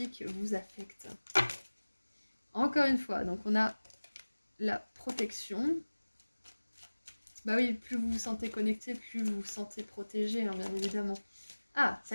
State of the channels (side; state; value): both; inverted; correlation -1.00